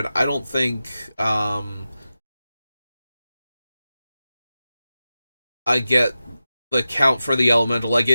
I don't think I get the count for the elemental. Like,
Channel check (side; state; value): both; inverted; correlation -0.93